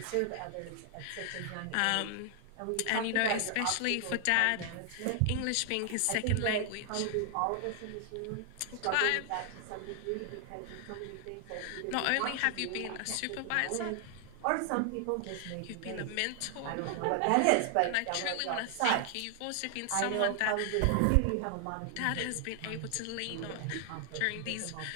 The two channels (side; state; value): both; different; correlation 0.00